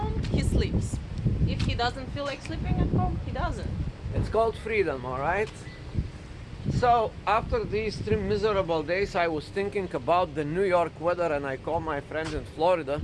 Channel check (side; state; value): both; identical; correlation 1.00